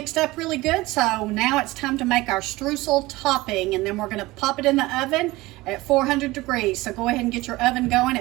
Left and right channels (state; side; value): quieter; left; 19.9 dB